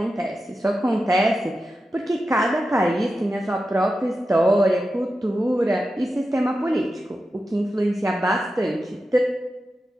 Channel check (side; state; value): both; normal; correlation 0.91